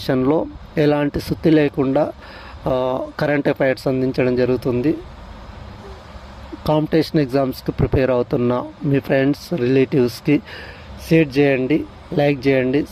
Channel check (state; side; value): identical; both; correlation 1.00